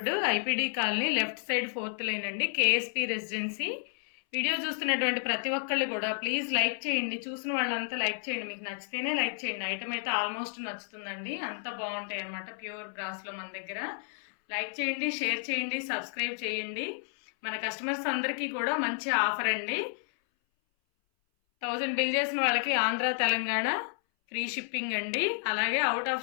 IPD colony, left side 4th line అండి, కేఎస్పీ రెసిడెన్సీ. వీడియో చూస్తున్నటువంటి ప్రతి ఒక్కళ్ళు కూడా ప్లీజ్ లైక్ చేయండి. చూసిన వాళ్ళంతా లైక్ చేయండి. మీకు నచ్చితేనే లైక్ చేయండి. ఐటమ్ అయితే ఆల్మోస్ట్ నచ్చుతుందండి. అంత బాగుంటాయి అనమాట ప్యూర్ బ్రాస్లో మన దగ్గర. లైక్ చేయండి, షేర్ చేయండి, సబ్స్క్రైబ్ చేయండి. మన కస్టమర్స్ అందరికీ కూడా మంచి ఆఫర్ అండి. 1000 బిల్ చేసిన వాళ్ళకి ఆంధ్ర, తెలంగాణ ఫ్రీ షిప్పింగ్ అండి. అలాగే అవుట్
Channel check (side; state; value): right; silent; 57 dB below the other